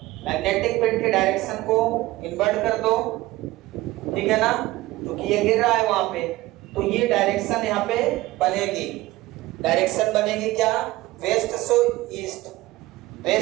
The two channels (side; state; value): left; quieter; 18.4 dB